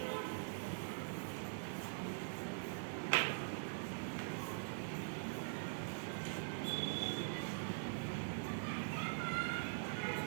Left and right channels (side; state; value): left; silent; digital silence